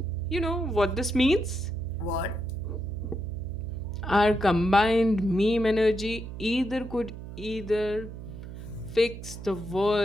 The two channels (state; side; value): noise; right; hum, 11 dB below the sound